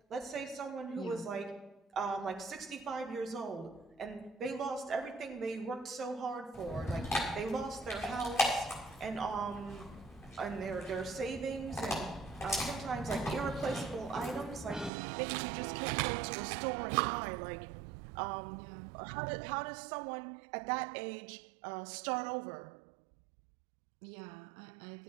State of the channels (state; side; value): drops out; left; at 14.9 s